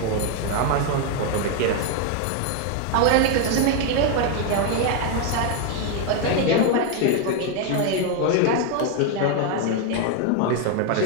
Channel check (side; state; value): both; different; correlation 0.01